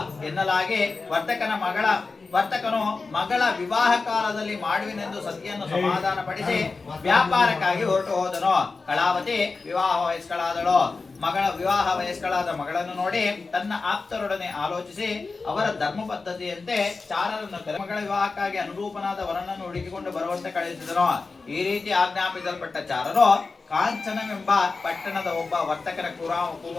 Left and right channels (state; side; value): quieter; right; 4.1 dB